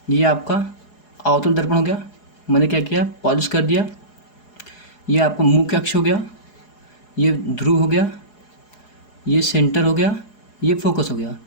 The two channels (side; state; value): right; late; 4.8 ms